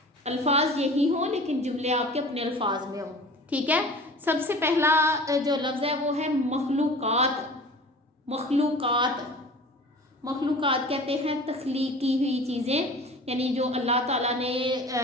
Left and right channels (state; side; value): normal; both; correlation 0.41